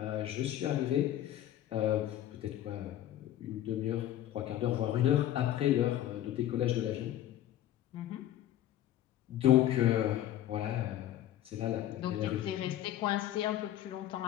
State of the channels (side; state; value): right; quieter; 12.5 dB